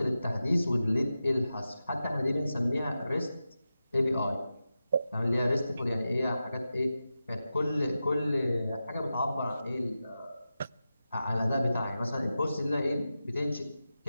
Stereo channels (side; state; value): both; inverted; correlation -0.92